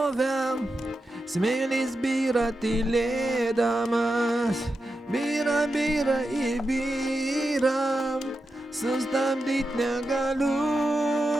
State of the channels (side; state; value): both; normal; correlation 0.89